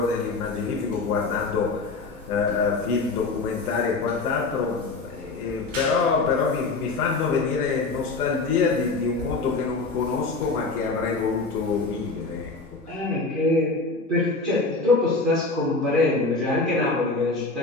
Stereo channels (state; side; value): quieter; right; 3.7 dB